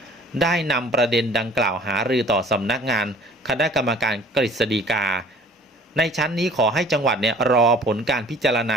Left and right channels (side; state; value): both; normal; correlation 0.51